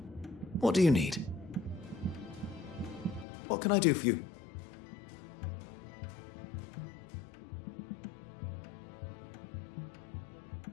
What do you need? What can I do for you?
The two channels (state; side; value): drops out; right; at 3.2 s